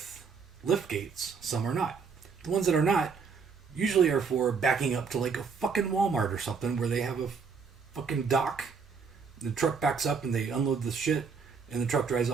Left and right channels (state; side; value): quieter; left; 5.5 dB